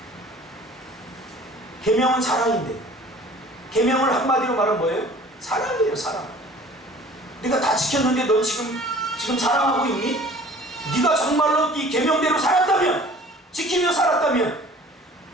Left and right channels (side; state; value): both; normal; correlation 0.48